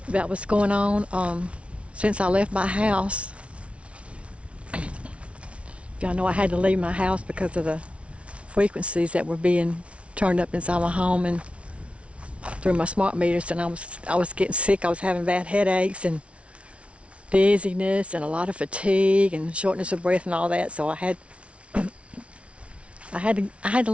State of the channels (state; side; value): late; left; 0.061 ms